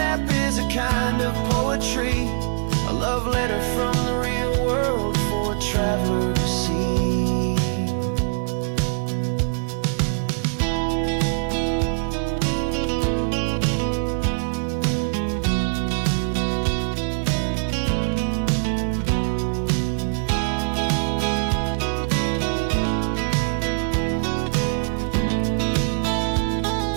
is a kind of poetry, a love letter from the real world for a traveler to see.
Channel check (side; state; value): left; silent; 62 dB below the other